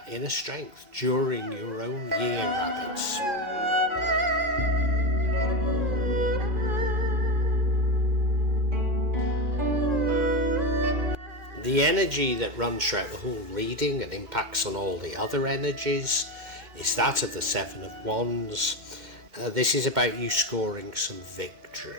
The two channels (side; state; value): left; late; 2.1 ms